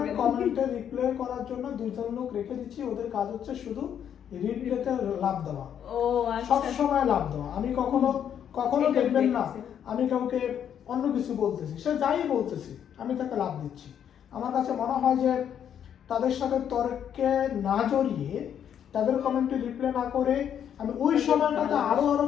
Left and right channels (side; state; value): right; quieter; 9.0 dB